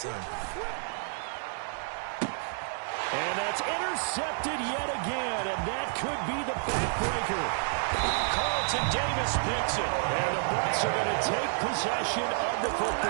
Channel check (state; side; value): silent; left; digital silence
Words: And that's intercepted yet again, and that could be the backbreaker. Carlton Davis picks it, and the Bucs are going to take possession of the